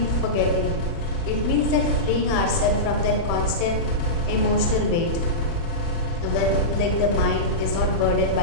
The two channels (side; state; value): right; late; 36 ms